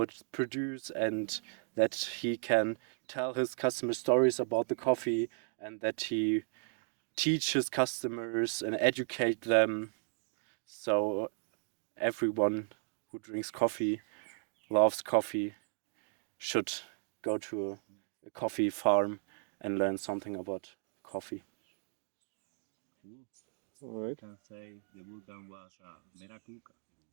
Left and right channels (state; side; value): silent; left; 54 dB below the other